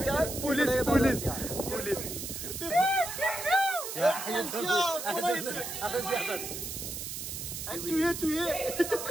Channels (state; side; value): noise; right; hiss, 6 dB below the sound